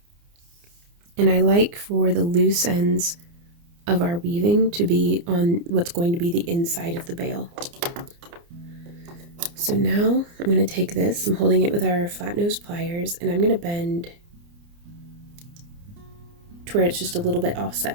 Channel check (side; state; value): left; late; 29 ms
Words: And I like for the loose ends of our weaving to be on what's going to be the inside of the bail. So now I'm going to take this, I'm holding it with our flat nose pliers, and I'm going to bend to where it's just a little bit